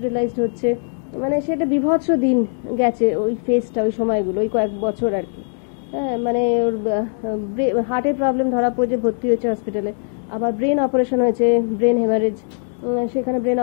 হচ্ছে, মানে সেটা বিভৎস দিন গেছে ওই ফেজটা, ওই সময়গুলো, ওই কয়েক বছর আর কি। হ্যাঁ, মানে ওর হার্টের প্রবলেম ধরা পড়েছে, ভর্তি হয়েছে হসপিটালে, আবার ব্রেন অপারেশন হয়েছে, ব্রেন হেমারেজ, সেখানে ব্রেন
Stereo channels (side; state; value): right; silent; digital silence